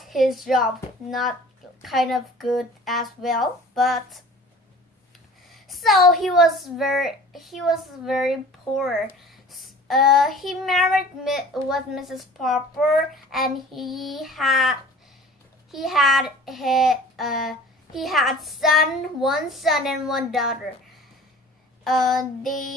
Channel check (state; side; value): normal; both; correlation 0.45